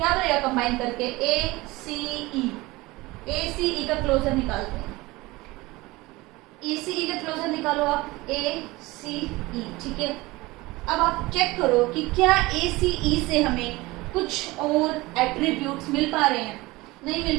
करेगा कंबाइन करके, ए सी ई, ए सी ई का क्लोजर निकालते हैं, ए सी ई का क्लोजर निकालो आप, ए सी ई, ठीक है। अब आप चेक करो कि क्या ए सी ई से हमें कुछ और एट्रीब्यूट्स मिल पा रहे हैं, नहीं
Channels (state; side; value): quieter; left; 21.1 dB